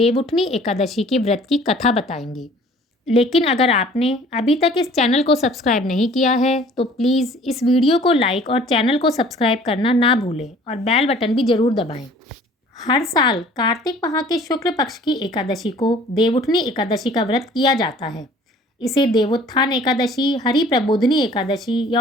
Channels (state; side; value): normal; both; correlation 0.52